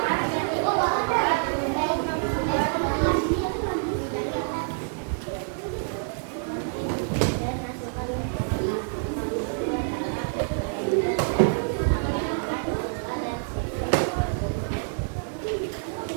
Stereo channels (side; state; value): left; silent; 60 dB below the other